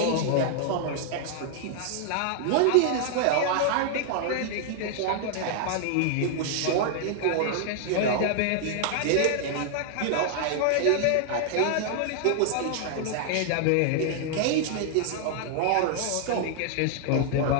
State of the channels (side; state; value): both; different; correlation 0.00